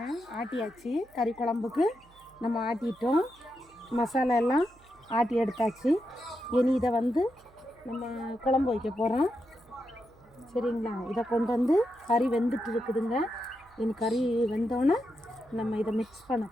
ஆட்டியாச்சு. கறி குழம்புக்கு நம்ம ஆட்டிட்டோம். மசாலா எல்லாம் ஆட்டி எடுத்தாச்சு. இனி இதை வந்து நம்ம குழம்பு வைக்க போகிறோம். சரிங்களா? இதை கொண்டு வந்து கறி வெந்துட்டு இருக்குதுங்க. இனி கறி வெந்தோன்னே நம்ம இதை மிக்ஸ் பண்ண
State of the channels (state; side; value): noise; right; hum, 28 dB below the sound